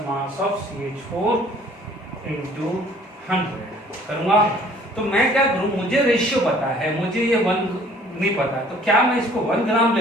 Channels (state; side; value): normal; both; correlation 0.55